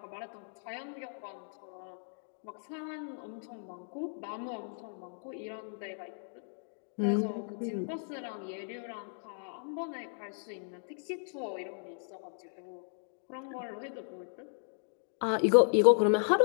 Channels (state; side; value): silent; right; digital silence